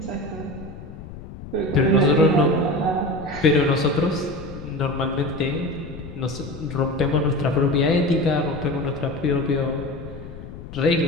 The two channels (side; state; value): left; noise; rumble, 13 dB below the sound